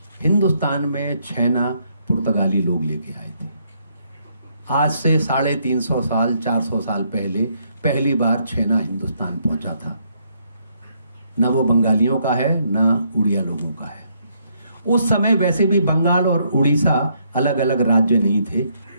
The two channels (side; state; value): both; inverted; correlation -0.72